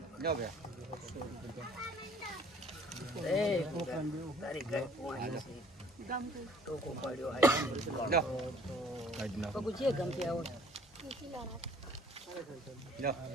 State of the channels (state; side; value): normal; both; correlation 0.55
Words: જો બે એ તારી ઘર પોણી ટોકો પાડ્યો આયા જો કાઢ નાખ પગું જે ગમતી આવો જો